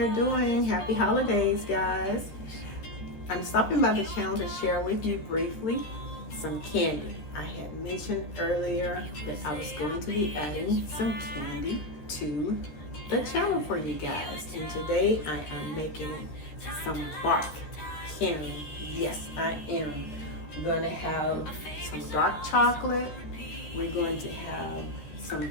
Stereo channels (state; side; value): late; right; 13 ms